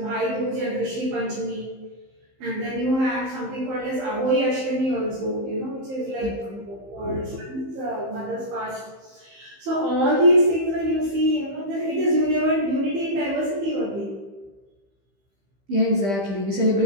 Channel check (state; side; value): late; left; 15 ms